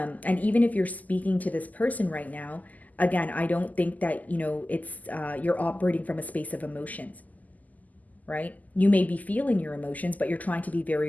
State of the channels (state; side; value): late; right; 0.079 ms